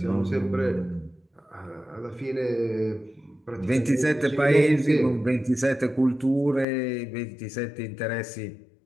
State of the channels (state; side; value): drops out; right; at 6.7 s